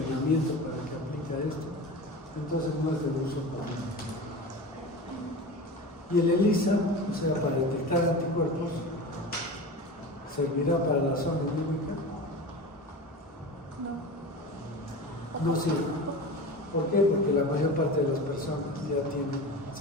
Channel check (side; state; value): both; normal; correlation 0.31